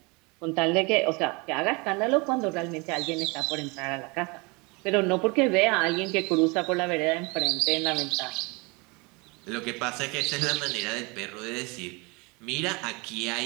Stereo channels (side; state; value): left; quieter; 27.9 dB